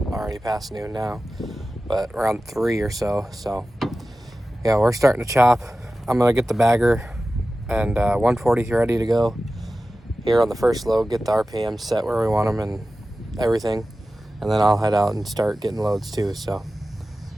already past noon now, but around 3 or so. So yeah, we're starting to chop. I'm gonna get the bagger and 140 ready to go here on the first load, get the RPM set where we want them and everything, and then I'll head out and start getting loads too. So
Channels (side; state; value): both; normal; correlation 0.95